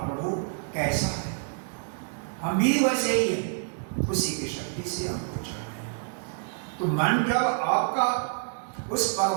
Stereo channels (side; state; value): left; silent; digital silence